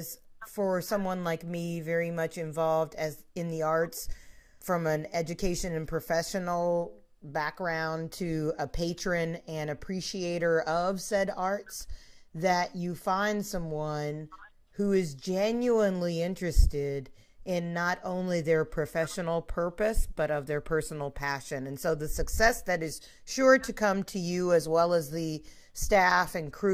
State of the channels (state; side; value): identical; both; correlation 1.00